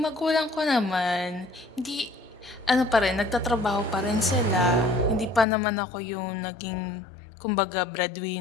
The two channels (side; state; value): right; drops out; at 5.5 s